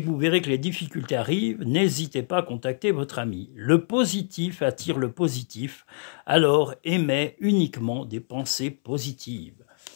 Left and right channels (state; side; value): silent; right; 61 dB below the other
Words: que vous verrez que les difficultés arrivent, n'hésitez pas à contacter votre ami. Le positif attire le positif, alors aimez uniquement des pensées positives.